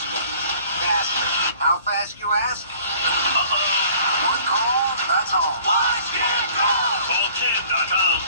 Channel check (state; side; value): inverted; both; correlation -0.52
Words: Faster. How fast, you ask? One call, that's all. Watch Ken call. Call Ken.com.